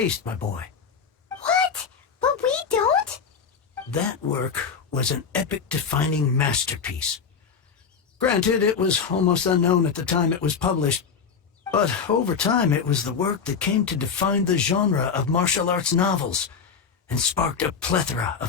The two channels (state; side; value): quieter; right; 6.1 dB